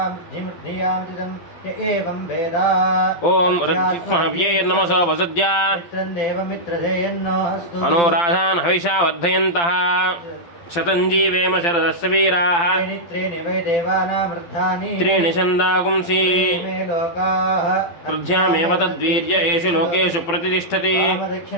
विदितं य एवं वेद ॐ रज्जुमहव्यैर्नमसो वसद्या मित्रं देवमित्रधेयन्नो अस्तु अनुराधान् हविषा वर्धयन्तः शतञ्जीवेम शरदस्य वीराः त्रीणि वै देवानामृद्धानि त्रीणि छन्दागुंसि मे लोकाः वृद्ध्यामेव तद्वीर्य एषु लोकेषु प्रतिष्ठति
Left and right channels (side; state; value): right; late; 12 ms